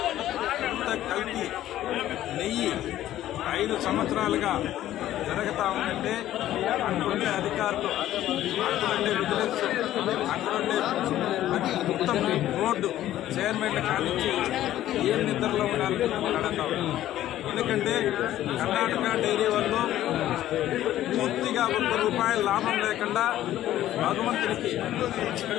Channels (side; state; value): right; quieter; 13.2 dB